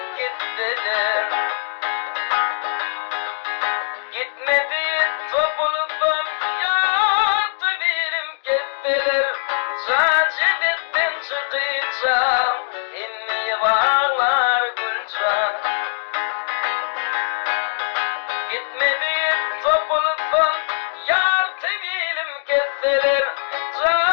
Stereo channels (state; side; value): silent; right; digital silence